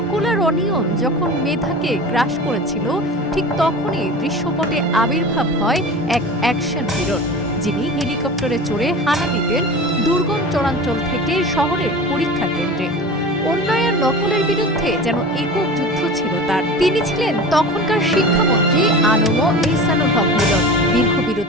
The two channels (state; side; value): normal; both; correlation 0.35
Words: আর অনিয়ম যখন মেধাকে গ্রাস করেছিল, ঠিক তখনই দৃশ্যপটে আবির্ভাব হয় এক অ্যাকশন হিরোর, যিনি হেলিকপ্টারে চড়ে হানা দিতেন দুর্গম চরাঞ্চল থেকে শহরের পরীক্ষা কেন্দ্রে। অন্যায় নকলের বিরুদ্ধে যেন একক যুদ্ধ ছিল তার। তিনি ছিলেন তখনকার শিক্ষামন্ত্রী আনম এহসানুল হক মিলন। দীর্ঘ